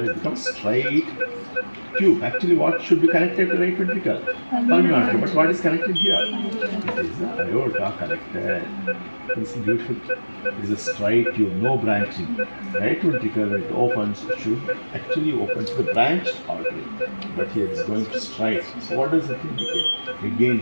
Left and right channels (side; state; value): both; inverted; correlation -1.00